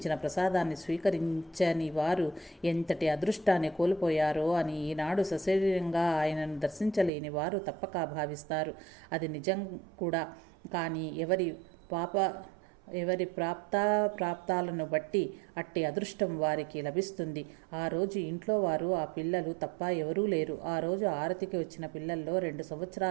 ప్రసాదాన్ని స్వీకరించని వారు ఎంతటి అదృష్టాన్ని కోల్పోయారో అని ఈనాడు సశరీరంగా ఆయనను దర్శించలేని వారు తప్పక భావిస్తారు. అది నిజం కూడా. కానీ ఎవరి ప్రాప్తాలను బట్టి అట్టి అదృష్టం వారికి లభిస్తుంది. ఆ రోజు ఇంట్లో వారు ఆ పిల్లలు తప్ప ఎవరూ లేరు. ఆ రోజు ఆరతికి వచ్చిన పిల్లల్లో 2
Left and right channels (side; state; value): left; drops out; at 7.1 s